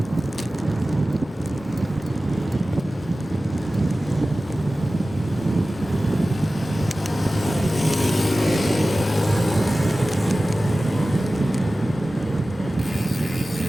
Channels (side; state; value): both; normal; correlation 0.96